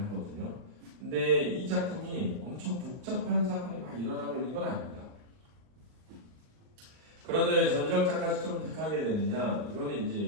하거든요. 근데 이 작품이 엄청 복잡한 사건이 막 일어나고 있는 건 아닙니다. 그런데 왜 전지적 작가 시점을 택하게 되느냐? 이거는 이제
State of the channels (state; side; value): late; left; 39 ms